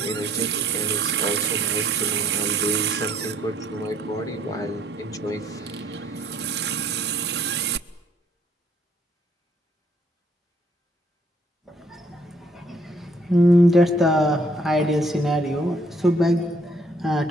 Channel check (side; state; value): both; normal; correlation 0.64